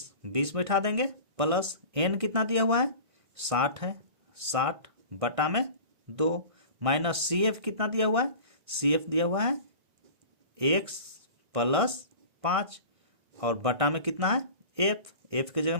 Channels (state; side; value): late; left; 1.5 ms